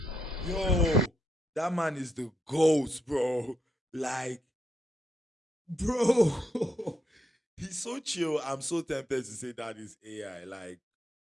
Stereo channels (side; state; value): both; normal; correlation 0.80